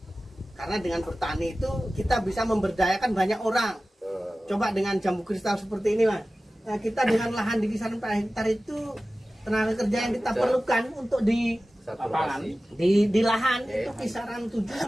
Karena dengan bertani itu kita bisa memberdayakan banyak orang. Coba dengan jambu kristal seperti ini, Mas. Nah, kita dengan lahan di kisaran 4 hektar itu tenaga kerja yang kita perlukan untuk di lapangan di lahan itu kisaran 7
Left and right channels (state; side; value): normal; both; correlation 0.96